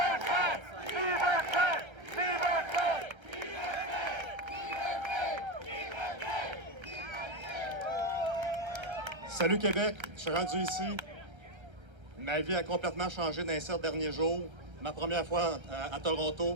Salut Québec, je suis rendu ici. Ma vie a complètement changé dans les 7 derniers jours. Ma première fois à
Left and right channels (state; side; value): late; left; 1.3 ms